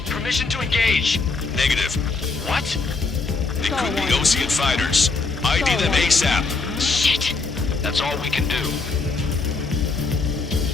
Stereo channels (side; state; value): right; quieter; 4.0 dB